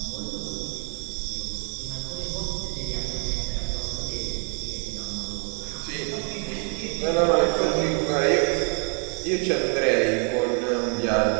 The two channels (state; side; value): quieter; left; 39.7 dB